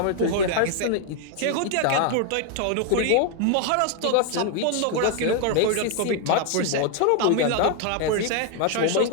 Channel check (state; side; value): different; both; correlation 0.01